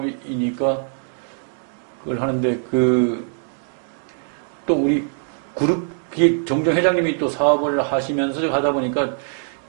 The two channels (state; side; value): silent; left; 61 dB below the other